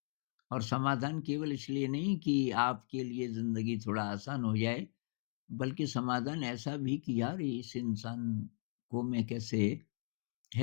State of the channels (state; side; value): silent; right; 53 dB below the other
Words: और समाधान केवल इसलिए नहीं कि आपके लिए ज़िंदगी थोड़ा आसान हो जाए, बल्कि समाधान ऐसा भी कि यार इस इंसान को मैं कैसे